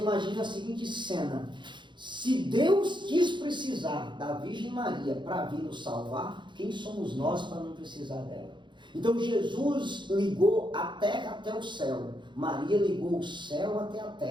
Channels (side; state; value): left; late; 0.23 ms